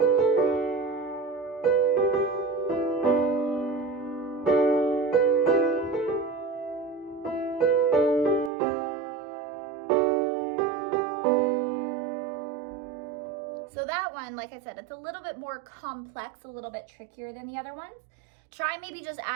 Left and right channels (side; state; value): left; drops out; at 8.5 s